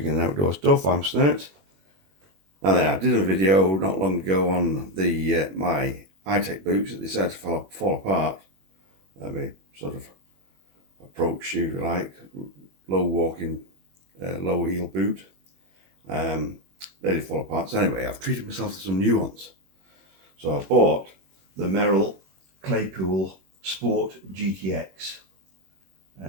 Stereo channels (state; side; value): late; left; 21 ms